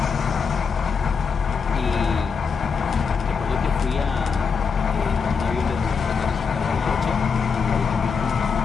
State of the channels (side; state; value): right; quieter; 5.6 dB